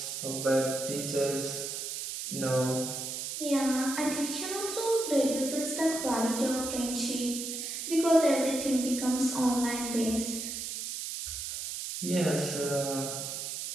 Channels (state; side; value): noise; right; hiss, 5 dB below the sound